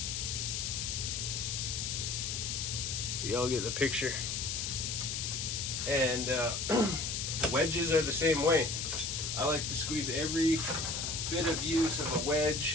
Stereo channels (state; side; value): noise; left; hiss, 2 dB below the sound